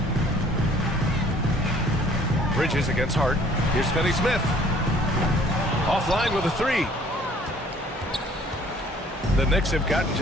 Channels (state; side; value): normal; both; correlation 0.56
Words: Bridges against Hart. Here's Finney-Smith. Offline with a 3. The Knicks have gotten